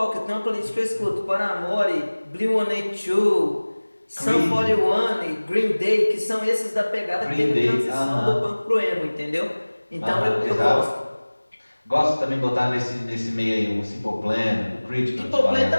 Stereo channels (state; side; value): inverted; both; correlation -1.00